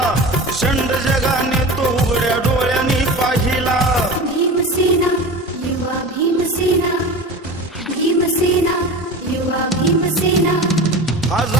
शंड जगाने तो उघड्या डोळ्यांनी पाहिला भीमसेना युवा भीमसेना भीमसेना युवा भीमसेना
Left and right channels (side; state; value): both; normal; correlation 0.32